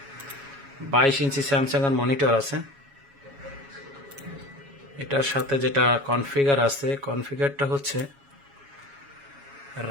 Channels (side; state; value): left; late; 7.2 ms